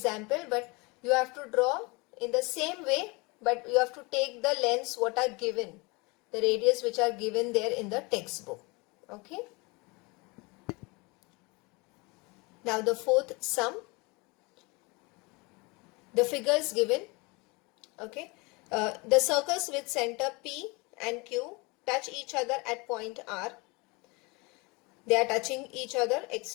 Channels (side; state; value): right; quieter; 27.0 dB